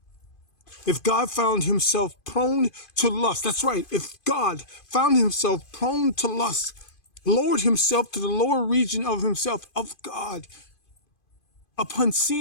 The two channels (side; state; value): right; late; 2.5 ms